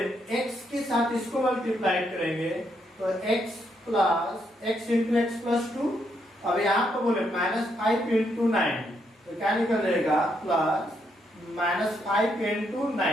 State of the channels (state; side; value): normal; both; correlation 0.77